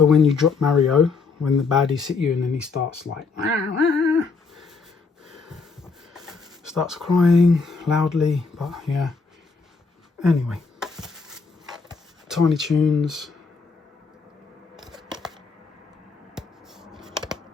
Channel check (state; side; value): quieter; right; 4.6 dB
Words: when you drop Mario, when the baddies hit you and then he starts like... starts crying loudly, but yeah. Anyway. Tiny Toons.